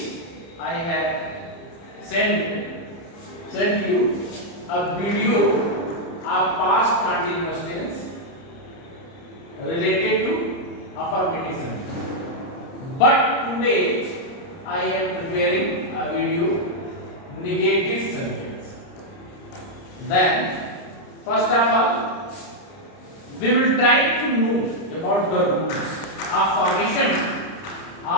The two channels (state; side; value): late; right; 30 ms